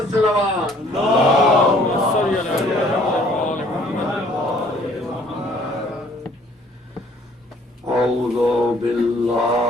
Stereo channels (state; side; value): normal; both; correlation 0.58